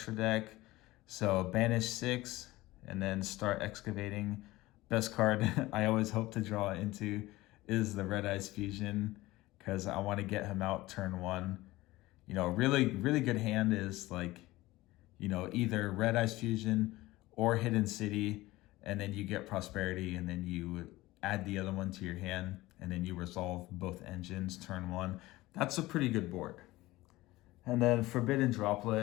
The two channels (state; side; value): quieter; right; 18.7 dB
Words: deck. So banish 6 and then start excavating. Best card I always hope to draw into is the Red Eyes Fusion because I want to get him out turn 1. Really, really good hand is like, either Red Eyes Fusion or Hidden City, and then you get Prosperity, and then you add the other one to your hand, and then you resolve both engines turn 1. That's a pretty good board. And then Forbidden